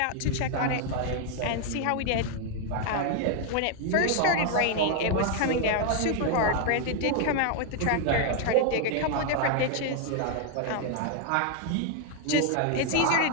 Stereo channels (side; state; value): both; different; correlation 0.00